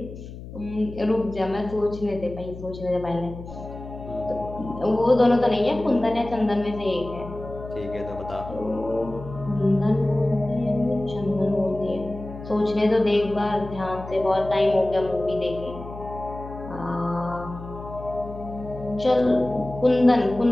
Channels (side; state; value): left; noise; hum, 13 dB below the sound